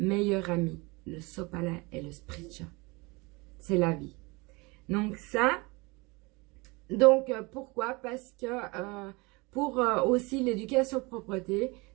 ami, le sopalin et le spritcha. C'est la vie. Donc ça, pourquoi? Parce que pour aussi l'éducation propreté,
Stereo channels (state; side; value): quieter; left; 26.1 dB